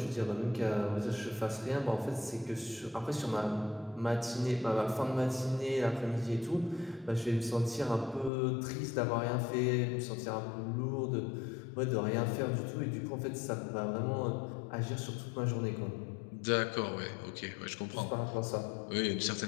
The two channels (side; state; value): right; drops out; at 8.3 s